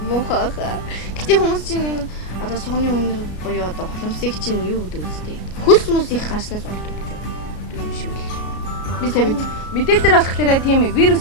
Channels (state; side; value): late; right; 33 ms